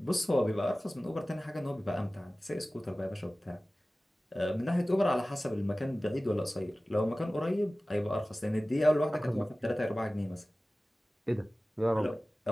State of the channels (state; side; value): normal; both; correlation 0.97